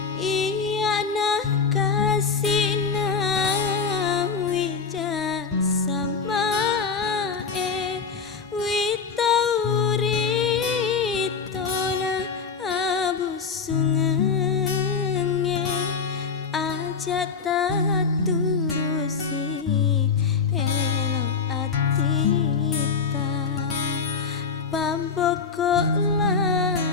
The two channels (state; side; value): quieter; right; 5.4 dB